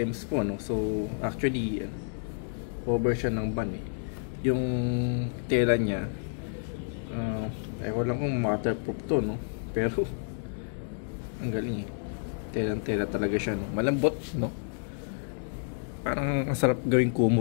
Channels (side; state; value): right; silent; digital silence